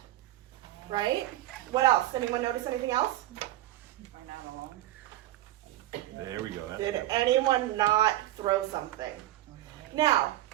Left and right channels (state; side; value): quieter; left; 15.1 dB